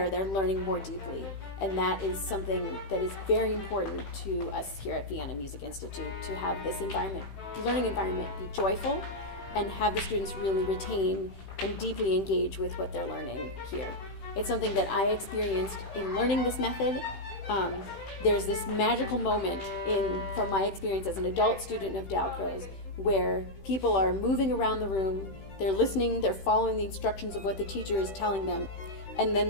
they're learning more deeply. And that is something that is very important to us here at Vienna Music Institute, to have this learning environment be joyful and have the students really retain and deeply engage with what they're learning here. It's something that I experienced in learning this method. There's this magical moment from my experience as an adult student of Dolcroze where people are moving around the room, they're listening, they're following the instructions of what the teacher is telling them. And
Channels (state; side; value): late; right; 15 ms